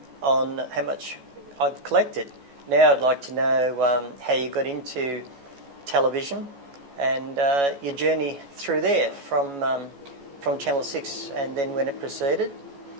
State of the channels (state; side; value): late; left; 14 ms